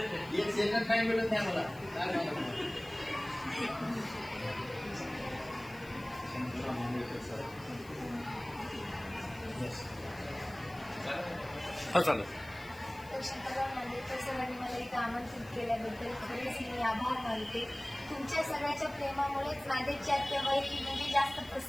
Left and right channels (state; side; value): noise; left; hiss, 23 dB below the sound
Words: second time मिळत नाही मला काय सांगू? चालेल. तर शंकरराव नांदेडकर सरांनी मला इथं आमंत्रित केल्याबद्दल खरेच मी आभार मानते. तुमच्या सगळ्याच्या प्रेमामुळेच नांदेडची आत्याबाई म्हणजे जास्त